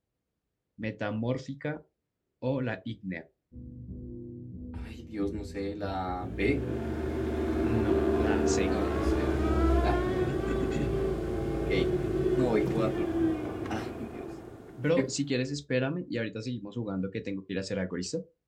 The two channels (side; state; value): both; identical; correlation 1.00